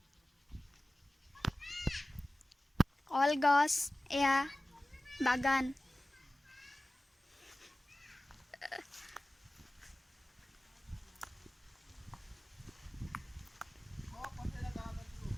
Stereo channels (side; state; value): both; normal; correlation 0.97